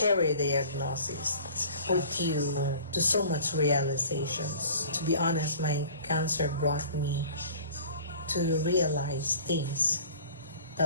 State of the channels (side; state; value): both; inverted; correlation -0.46